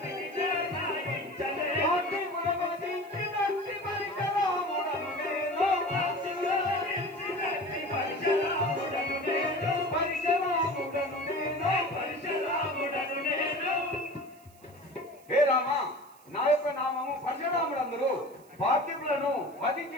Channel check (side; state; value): right; noise; hiss, 28 dB below the sound